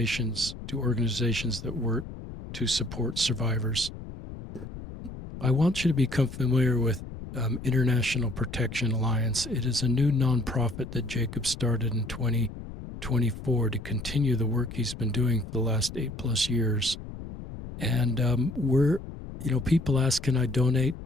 that work to support survivors. I want you to become familiar with International Protection Alliance. It is a new nonprofit that Jacob started in 2024 to continue the work he's been doing for the last 8+ years. And people ask, can I donate?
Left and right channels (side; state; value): left; noise; rumble, 11 dB below the sound